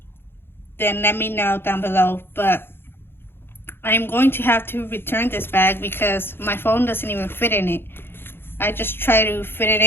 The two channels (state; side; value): late; right; 0.11 ms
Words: then let me know down below. But I'm going to have to return this bag because my phone doesn't even fit in it. I just try to fit it